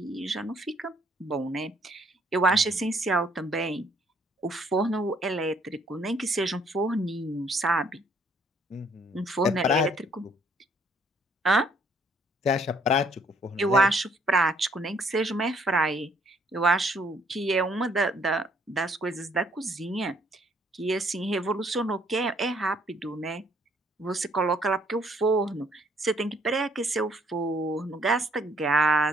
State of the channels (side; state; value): both; normal; correlation 0.65